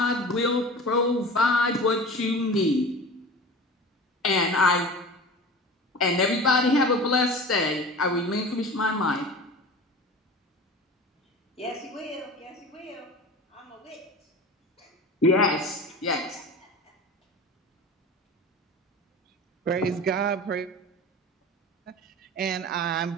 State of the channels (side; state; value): both; normal; correlation 0.35